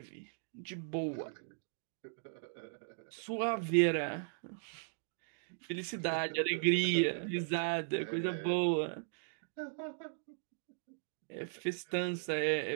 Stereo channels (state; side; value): silent; left; digital silence